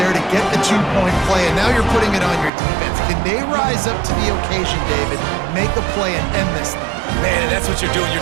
to get the 2-point play, and now you're putting it on your defense. Can they rise up to the occasion, David, make a play and end this thing? Man, and that's what you're doing.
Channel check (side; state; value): left; drops out; at 2.5 s